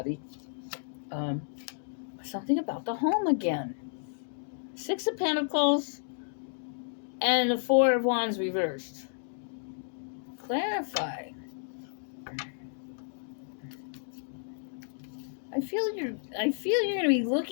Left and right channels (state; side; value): silent; right; digital silence